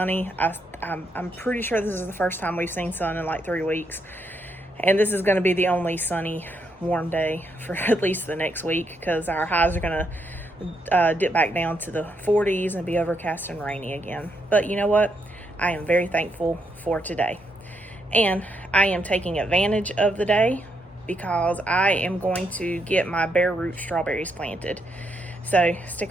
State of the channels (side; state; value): both; normal; correlation 0.78